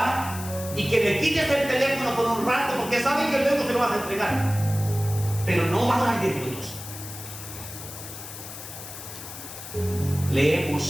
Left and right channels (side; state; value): left; noise; hiss, 12 dB below the sound